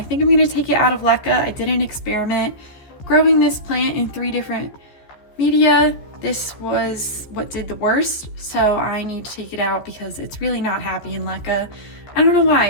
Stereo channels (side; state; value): right; late; 14 ms